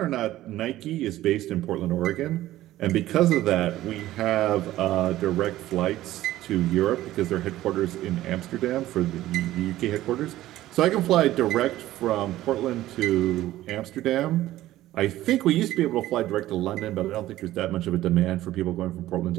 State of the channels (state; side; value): quieter; left; 14.9 dB